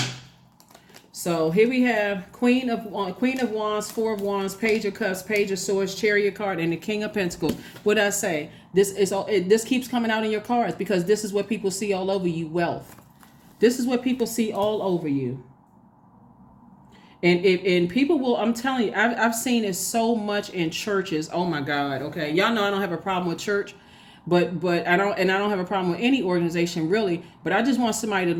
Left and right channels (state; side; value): identical; both; correlation 1.00